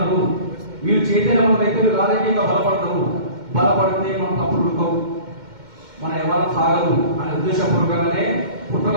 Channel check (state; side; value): late; left; 2.1 ms